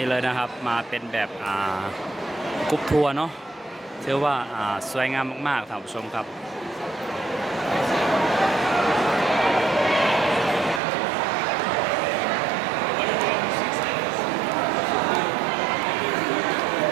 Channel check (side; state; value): left; drops out; at 10.8 s